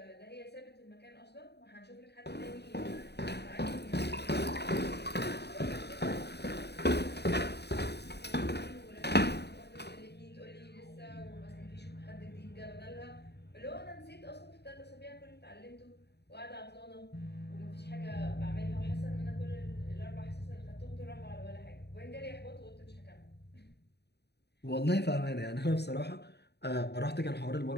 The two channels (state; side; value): late; right; 0.48 ms